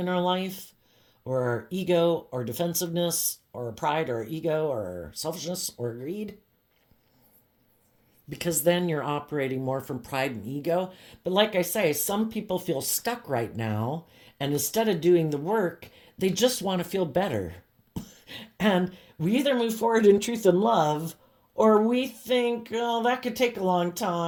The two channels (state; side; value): identical; both; correlation 1.00